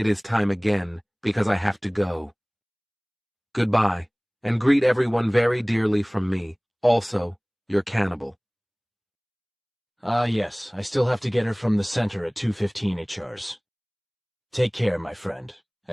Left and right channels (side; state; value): both; identical; correlation 1.00